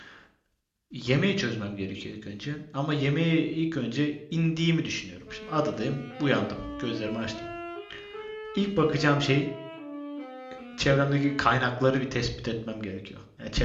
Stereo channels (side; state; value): both; identical; correlation 1.00